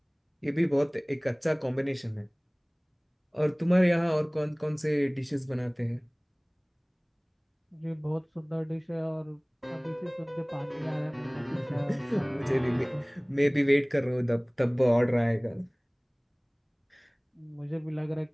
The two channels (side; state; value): both; identical; correlation 1.00